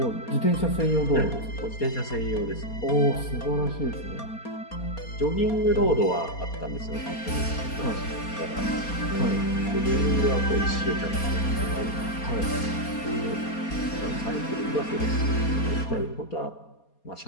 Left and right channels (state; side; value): late; right; 4.2 ms